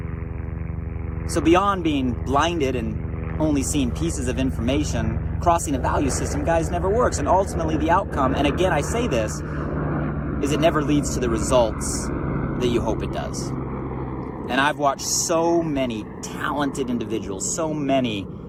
So beyond being blinded and only seeing pieces of information, crossing a value system, guys, never works. And ultimately the outcome, and again, I say this, is it never leads to the results that you hope it does. And I've watched so many talented individuals, so many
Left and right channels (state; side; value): identical; both; correlation 1.00